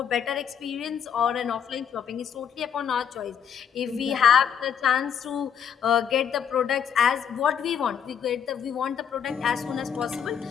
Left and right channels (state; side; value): quieter; right; 7.9 dB